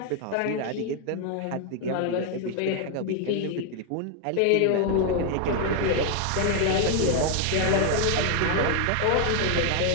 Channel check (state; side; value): different; both; correlation 0.00